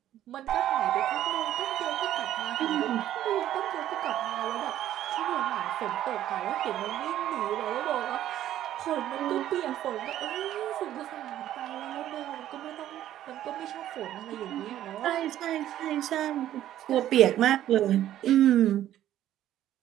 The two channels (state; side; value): quieter; left; 12.3 dB